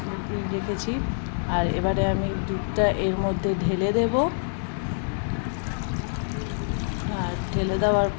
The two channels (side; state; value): right; silent; 61 dB below the other